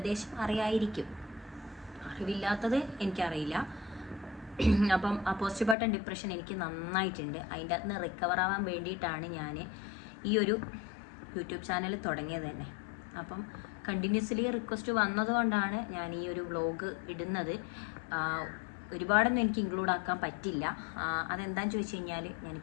അറിയായിരിക്കും. അറിവില്ലാത്തത് എനിക്കറിയില്ല. അപ്പം ആ പോസ്റ്റ് പാർട്ടം ഡിപ്രഷൻ എനിക്ക് നന്നായിട്ടുണ്ട്. അതിൻ്റെ അകത്ത് നിന്ന് റിക്കവർ ആവാൻ വേണ്ടിയിട്ടാണ് ഞാൻ ഈ ഒരു യൂട്യൂബ് ചാനൽ തുടങ്ങിയത് തന്നെ. അപ്പം കണ്ടിന്യൂസ്ലി റിക്വസ്റ്റ് വന്നതുകൊണ്ടാണ് ഞാൻ ഈ ഒരു വ്ലോഗ് ഇടുന്നത്. ഒരുപാടൊന്നും എനിക്ക് ഇൻക്ലൂഡ് ആക്കാൻ പറ്റില്ല. അതെന്താണെന്ന് ചോദിച്ചു കഴിഞ്ഞാൽ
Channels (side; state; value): right; drops out; at 5.8 s